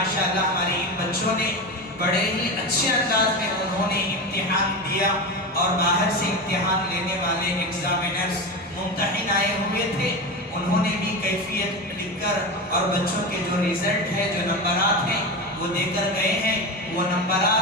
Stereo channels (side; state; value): both; normal; correlation 0.22